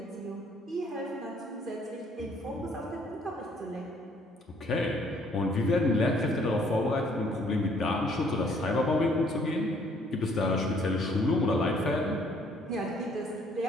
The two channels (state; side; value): normal; both; correlation 0.63